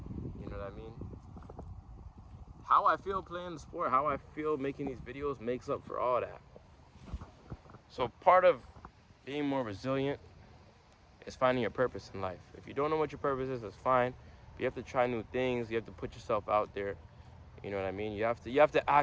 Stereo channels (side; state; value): both; identical; correlation 1.00